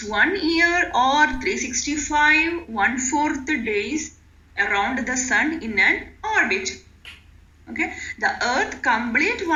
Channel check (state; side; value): identical; both; correlation 1.00